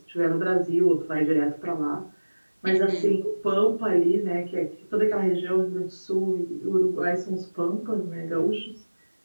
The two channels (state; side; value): inverted; both; correlation -1.00